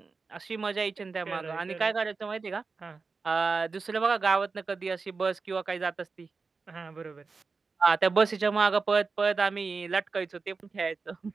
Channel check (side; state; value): left; quieter; 4.4 dB